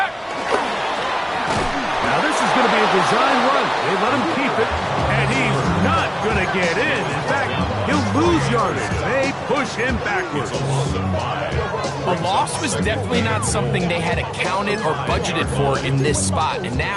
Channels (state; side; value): identical; both; correlation 1.00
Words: Now this is going to be a design run. They let him keep it, and he's not going to get in. In fact, he'll lose yardage. They push him backwards. A loss was definitely not something they had accounted or budgeted for in this spot. And